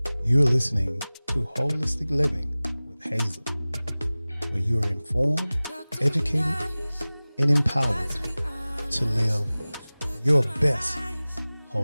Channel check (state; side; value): inverted; both; correlation -0.99